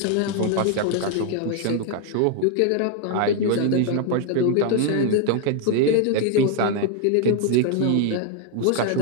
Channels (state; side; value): different; both; correlation 0.00